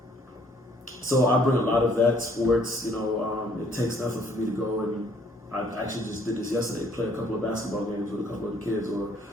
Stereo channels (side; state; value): both; normal; correlation 0.63